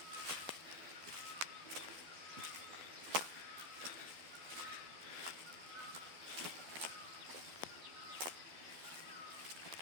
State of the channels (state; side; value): late; left; 12 ms